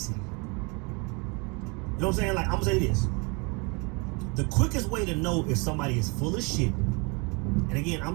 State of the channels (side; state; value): left; quieter; 30.8 dB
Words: You know what I'm saying? Like, I'm gonna say this. The quickest way to know if somebody is full of shit, and again,